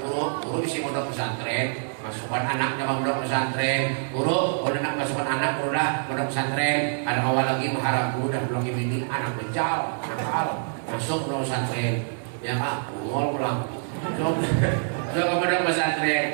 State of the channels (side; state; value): left; silent; digital silence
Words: guru bisa mondok pesantren, masukkan anaknya mondok pesantren, guru nak masukkan anak udah mondok pesantren, ada awal lagi mengharap guru dan lagi bini anak becal, masuk mondok pesantren, ya kan, pulang. Kalau kepada